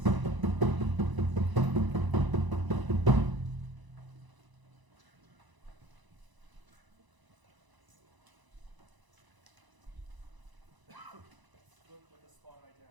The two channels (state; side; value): late; left; 1.0 ms